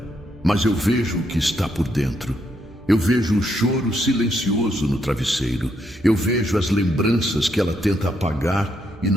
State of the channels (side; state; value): both; normal; correlation 0.77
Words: Mas eu vejo o que está por dentro. Eu vejo o choro silencioso no travesseiro. Eu vejo as lembranças que ela tenta apagar e